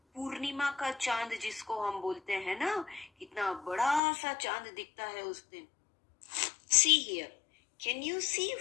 पूर्णिमा का चांद जिसको हम बोलते हैं ना, कितना बड़ा सा चांद दिखता है उस दिन. See here, can you see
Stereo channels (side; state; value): right; drops out; at 4.0 s